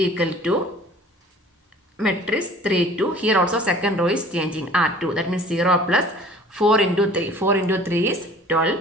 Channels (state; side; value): normal; both; correlation 0.49